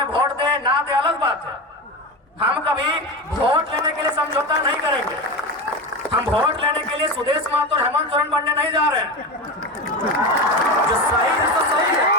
वोट दे ना दे अलग बात है। हम कभी वोट लेने के लिए समझौता नहीं करेंगे। हम वोट लेने के लिए सुदेश महतो और हेमंत सोरेन बनने नहीं जा रहे हैं। जो सही है तो सही है,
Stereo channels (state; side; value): normal; both; correlation 0.22